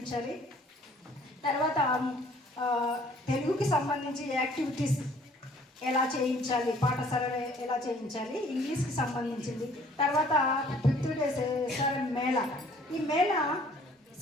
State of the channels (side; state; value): both; normal; correlation 0.57